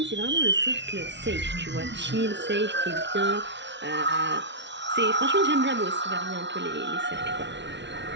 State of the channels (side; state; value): left; late; 0.52 ms